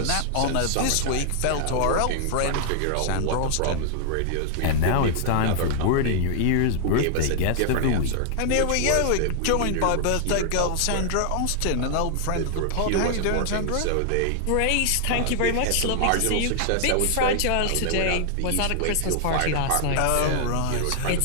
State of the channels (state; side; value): different; both; correlation 0.00